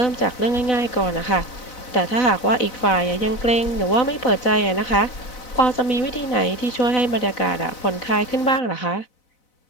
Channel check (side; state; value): right; late; 3.9 ms